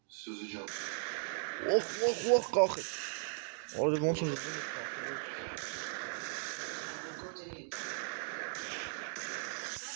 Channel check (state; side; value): silent; left; 53 dB below the other